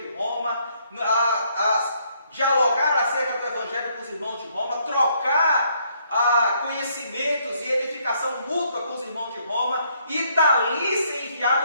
Roma, dialogar acerca do Evangelho com os irmãos de Roma, trocar conhecimentos e edificação mútua com os irmãos de Roma, e dali ser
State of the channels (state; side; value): inverted; both; correlation -0.70